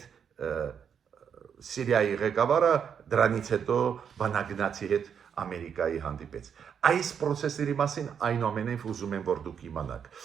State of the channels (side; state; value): left; quieter; 7.6 dB